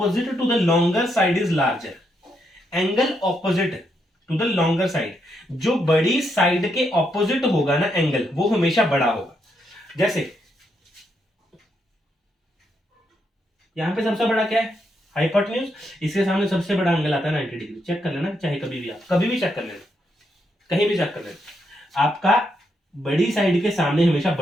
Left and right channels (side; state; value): both; normal; correlation 0.79